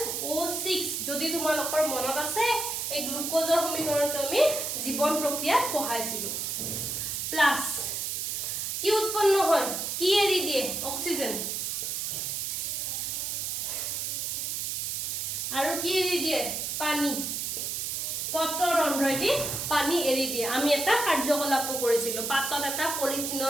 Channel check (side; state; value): right; noise; hiss, 2 dB below the sound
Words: যদি তোমালোকৰ মনত আছে এই গ্লুকোজৰ সমীকৰণটো আমি জীৱন প্ৰক্ৰিয়াত পঢ়াইছিলো প্লাস কি উৎপন্ন হয় কি এৰি দিয়ে অক্সিজেন আৰু কি এৰি দিয়ে পানী পত্ৰৰ ৰন্ধ্ৰইদি পানী এৰি দিয়ে আমি এটা কাৰ্যকলাপ কৰিছিলো পাতত এটা